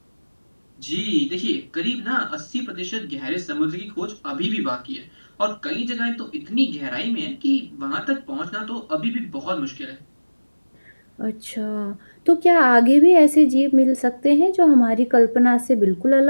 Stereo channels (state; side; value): inverted; both; correlation -1.00